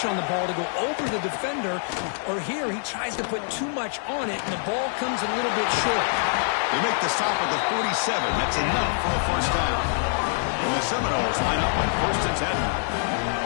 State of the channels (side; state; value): right; silent; 62 dB below the other